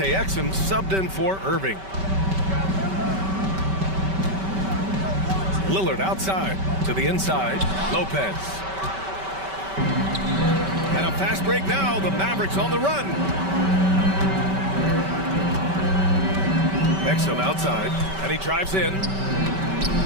Exum subbed in for Irving. Lillard outside to the inside. Lopez. And a fast break now. The Mavericks on the run. Exum outside. And he drives in.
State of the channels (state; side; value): late; left; 5.2 ms